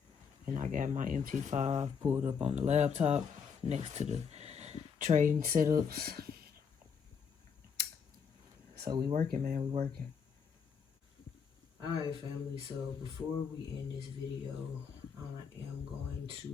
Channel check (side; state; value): right; quieter; 6.4 dB